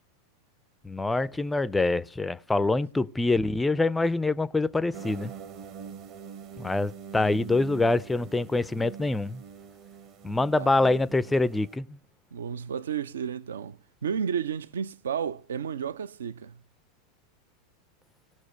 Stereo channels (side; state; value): both; normal; correlation 0.78